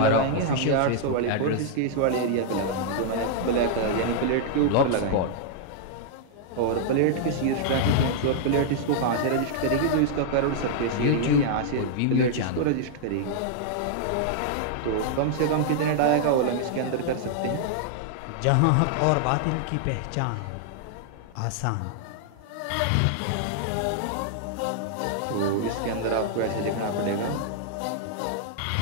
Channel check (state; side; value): different; both; correlation -0.01